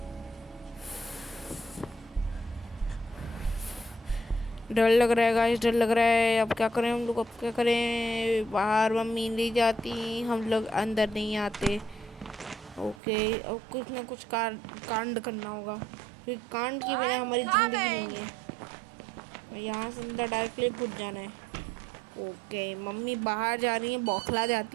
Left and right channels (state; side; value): drops out; left; at 13.0 s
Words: डर लग रहा है गाइस, डर लग रहा है। अब क्या करें हम लोग, अब क्या करें? बाहर मम्मी नहीं जाती, हम लोग अंदर नहीं आते। ओके, अब कुछ ना कुछ कांड करना होगा, क्योंकि कांड के बिना हमारी ज़िंदगी नहीं है। यहाँ से अंदर डायरेक्टली घुस जाना है। ओके, मम्मी बाहर जा रही हैं, बौखला